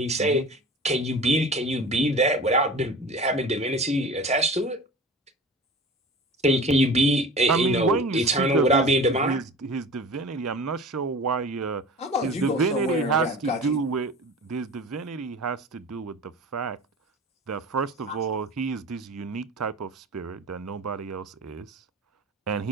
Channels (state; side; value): normal; both; correlation 0.38